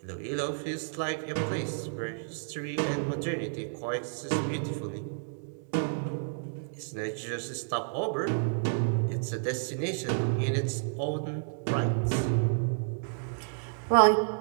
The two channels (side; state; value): left; silent; digital silence